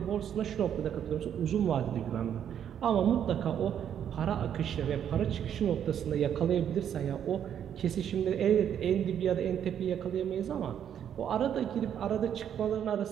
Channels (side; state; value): left; quieter; 9.2 dB